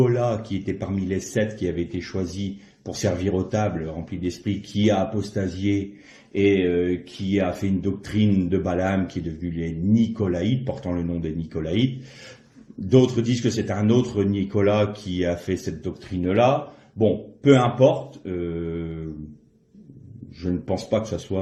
qui était parmi les 7 qui avaient été choisis pour servir aux tables remplis d'esprit, qui a apostasié et qui a fait une doctrine de Balaam qui est devenue les Nicolaïtes, portant le nom des Nicolaïtes. D'autres disent que c'est un autre Nicolas qui a fait cette doctrine-là. Bon, peu importe. Je ne pense pas que ce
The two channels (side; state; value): both; identical; correlation 1.00